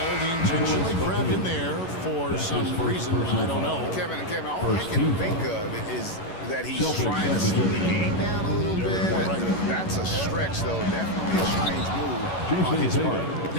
He intentionally grabbed him there for some reason. I don't know. Kevin, all I can think of is that he's trying to slow the game down a little bit. That's a stretch, though. Definitely a strange move on his part.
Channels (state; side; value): late; right; 11 ms